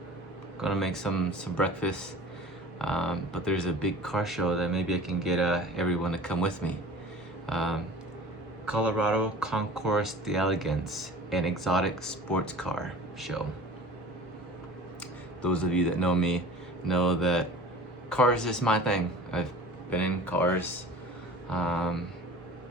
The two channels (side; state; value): both; normal; correlation 0.41